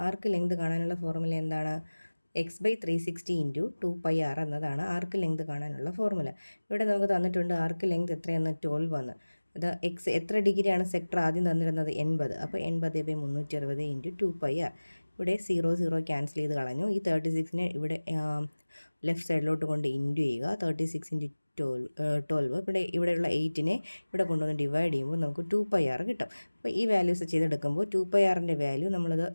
എന്താണ്? x/360 × 2πr എന്നതാണ് ആർക്ക് ലെങ്ത് കാണാനുള്ള ഫോർമുല. ഇവിടെ നമുക്ക് തന്നിട്ടുണ്ട് ആർക്ക് ലെങ്ത് എത്രയെന്ന് 12 എന്ന്. അത് എത്ര ഡിഗ്രിയാണ് സെക്ടർ ആദ്യം തന്നിരുന്നത്? 80. അപ്പോൾ 80/360 × 2πr. ഇവിടെ 0 ക്യാൻസൽ ചെയ്ത് കളഞ്ഞു. ഈ 36നെ ഇവിടെ ലെഫ്റ്റ് സൈഡിലോട്ട് കൊണ്ട് ഇൻറ്റു ചെയ്യുക. 36 × 12. ഇവിടെയുള്ള 8നെ ഇവിടെ കൊണ്ടുവന്ന് ഡിവൈഡ് ചെയ്യുമ്പോൾ നമുക്ക് 2πr കിട്ടും. അപ്പോൾ ഈ വാല്യൂസ് ചെയ്തെടുക്കുമ്പോൾ 2πrൻ്റെ വാല്യൂ നമ്മളത്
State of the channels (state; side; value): inverted; both; correlation -1.00